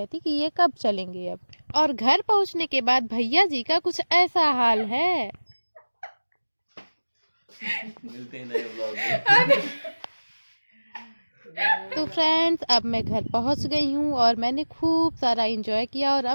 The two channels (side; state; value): both; inverted; correlation -1.00